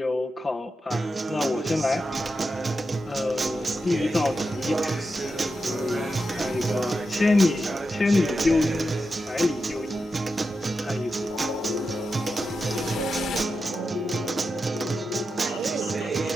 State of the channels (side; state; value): both; normal; correlation 0.89